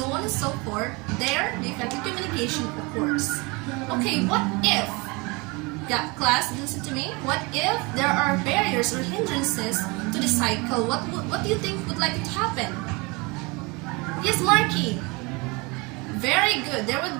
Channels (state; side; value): quieter; left; 27.0 dB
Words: on and so forth. There, the effective communication occurs. Okay, what if, class, listen to me, what if there are barriers or hindrances to the cycle? What do you think would like to happen? Yes, Marky. Very good. There